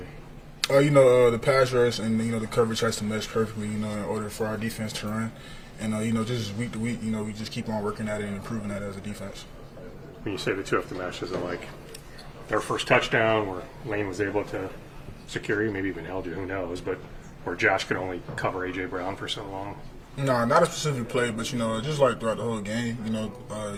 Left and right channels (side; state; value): both; identical; correlation 1.00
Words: The pass rush and, the coverage has to mesh perfectly, in order for our defense to run. And, just week to week, we just keep on working at it and improving that as a defense. When you say the two have to mesh, is it like their first touchdown where Lane was able to secure you, maybe even held you, who knows, but where Josh could only cover A.J. Brown for so long? No, not a specific play, but, just like throughout the whole game,